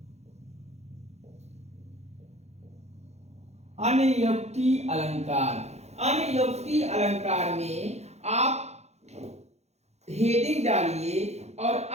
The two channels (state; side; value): late; left; 0.32 ms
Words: अनियोक्ति अलंकार। अनियोक्ति अलंकार में आप हेडिंग डालिए और